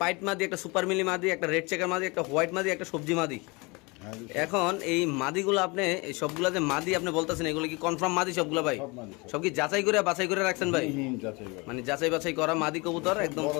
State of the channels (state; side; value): quieter; right; 27.1 dB